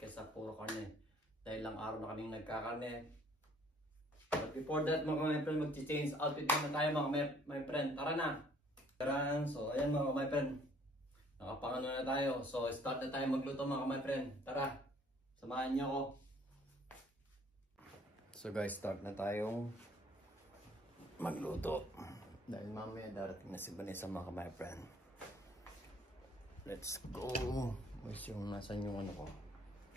kaysa puro karne. Dahil lang araw na kaming nagkakarne. But before that mga friend, mag-change outfit muna tayo mga friend. Tara na! Tara! So ayan mga friend, nakapangano na tayo. So start na tayo magluto mga friend. Tara! Samahan niyo ako. So guys, start na tayong magluto. Dahil mamaya darating na si Vanessa mga friend. Let's go! Where's yung nasan yung ano ko?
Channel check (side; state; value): both; normal; correlation 0.59